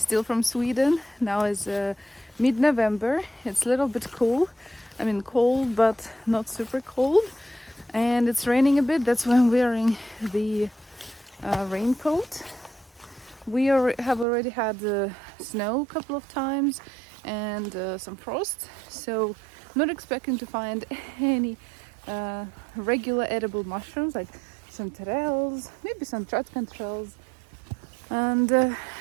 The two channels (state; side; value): drops out; left; at 14.2 s